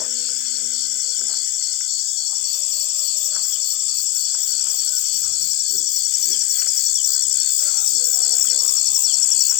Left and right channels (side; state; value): right; quieter; 16.1 dB